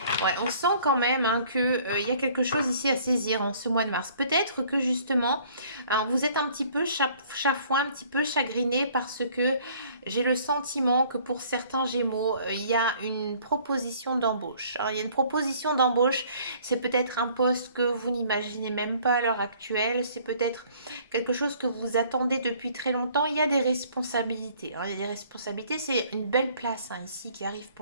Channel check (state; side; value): inverted; both; correlation -0.56